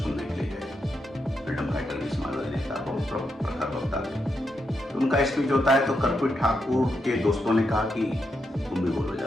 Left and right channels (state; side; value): normal; both; correlation 0.83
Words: के लिए गए। फ्रीडम फाइटर भी समाजवादी नेता, बहुत प्रखर वक्ता थे। तो उनका स्पीच होता है, तो कर्पूरी ठाकुर के दोस्तों ने कहा कि तुम भी बोलो